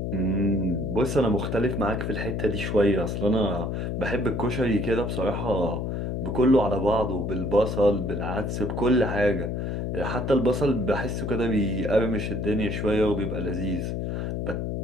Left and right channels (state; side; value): noise; left; hum, 2 dB below the sound